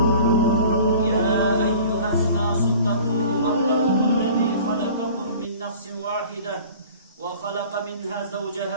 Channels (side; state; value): both; inverted; correlation -0.45